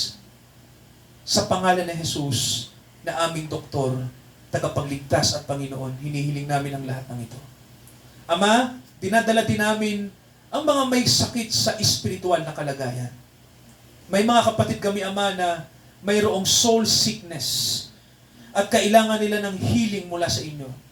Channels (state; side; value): identical; both; correlation 1.00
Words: Sa pangalan ni Jesus na aming doktor, tagapagligtas at Panginoon, hinihiling namin ang lahat ng ito. Ama, dinadala din namin ang mga may sakit sa espiritual na kalagayan. May mga kapatid kami, Ama, na mayroong soul sickness at kailangan nila ng healing mula sa inyo.